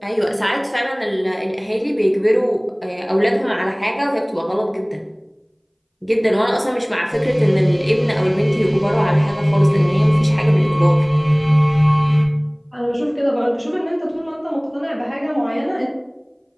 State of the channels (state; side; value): identical; both; correlation 1.00